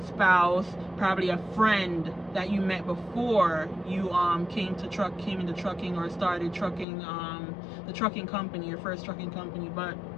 spouse, probably a friend that you met before you came into trucking or started trucking, the trucking company, your first trucking company. But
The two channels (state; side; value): drops out; right; at 6.9 s